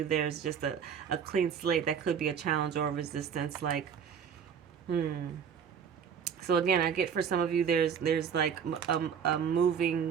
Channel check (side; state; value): left; quieter; 7.5 dB